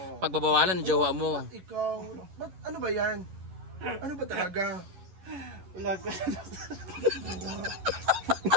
pagbabawalan ng jowa mo. Ikaw, ano ba yan? Ano ba talaga? Wala ko.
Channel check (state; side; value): late; left; 11 ms